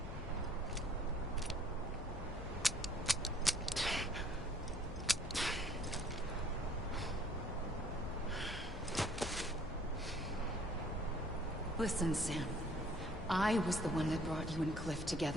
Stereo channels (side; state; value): left; noise; hum, 9 dB below the sound